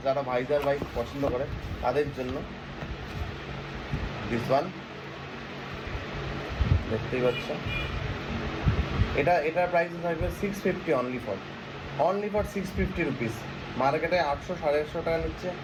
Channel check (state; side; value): identical; both; correlation 1.00